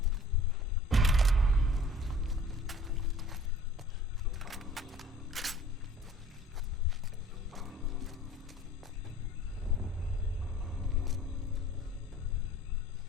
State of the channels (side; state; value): both; normal; correlation 0.51